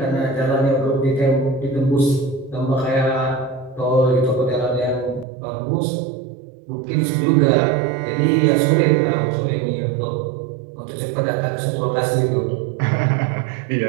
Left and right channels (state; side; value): drops out; left; at 5.2 s